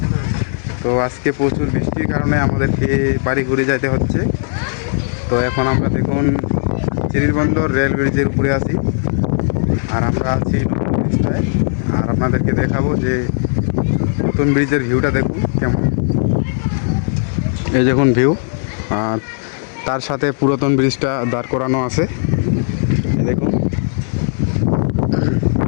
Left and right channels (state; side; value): silent; right; digital silence